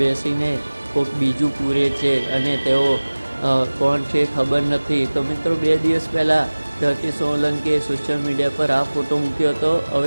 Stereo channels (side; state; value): both; inverted; correlation -1.00